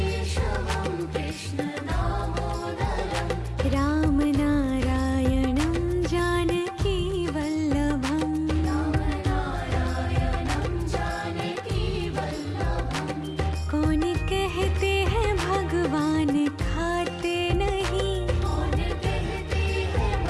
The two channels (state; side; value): identical; both; correlation 1.00